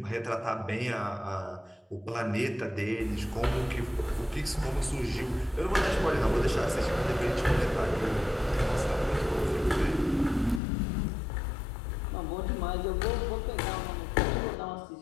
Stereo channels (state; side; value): drops out; right; at 10.6 s